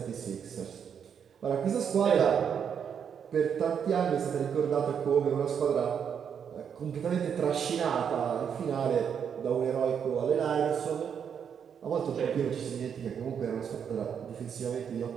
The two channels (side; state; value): left; quieter; 7.6 dB